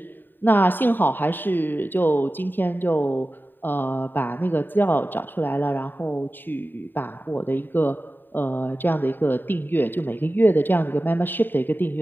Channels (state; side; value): late; right; 0.093 ms